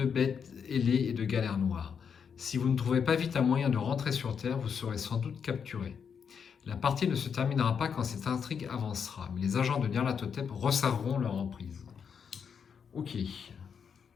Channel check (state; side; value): quieter; right; 6.8 dB